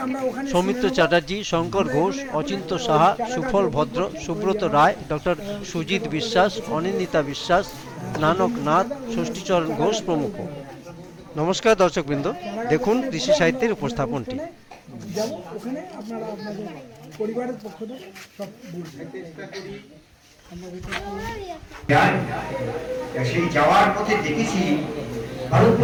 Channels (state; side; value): identical; both; correlation 1.00